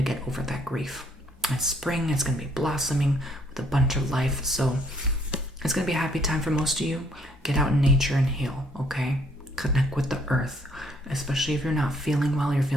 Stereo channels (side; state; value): both; normal; correlation 0.65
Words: get over that grief. It's spring, it's going to be blossoming with a bunch of life. So it's going to be a happy time for most of you. Get out in nature and heal, okay? Connect with the earth, especially if you're not feeling well, you're